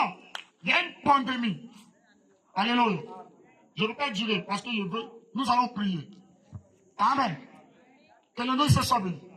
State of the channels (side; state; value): both; identical; correlation 1.00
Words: il y a une pandémie, alléluia, je ne veux pas durer parce que je veux, nous allons prier. Amen. Que le nom se soit béni.